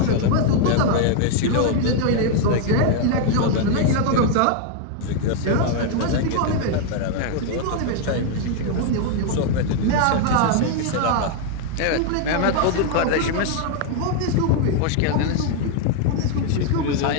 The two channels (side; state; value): both; different; correlation 0.00